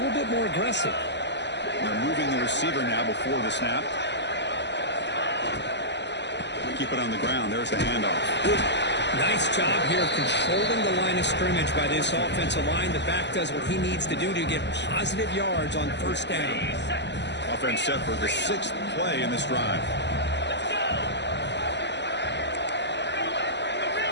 bit more aggressive. They're moving the receiver now before the snap. Keep it on the ground. There's the handoff. Nice job here of controlling the line of scrimmage by this offensive line. The back does what he needs to do to get positive yards on first down. Offense set for the 6th play in this drive.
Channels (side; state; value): right; late; 0.51 ms